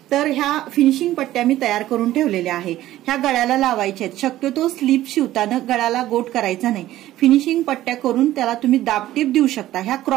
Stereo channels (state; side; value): quieter; left; 14.5 dB